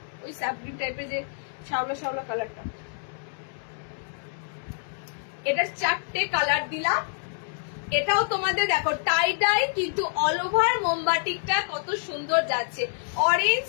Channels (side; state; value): right; silent; digital silence